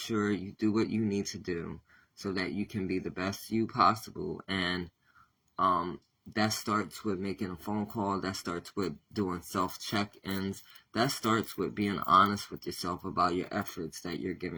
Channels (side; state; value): both; identical; correlation 1.00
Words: you do what you need to do so that you can be the best you possible. And that starts with making a phone call. That starts with doing self-check-ins. That starts with being honest with yourself about your efforts that you're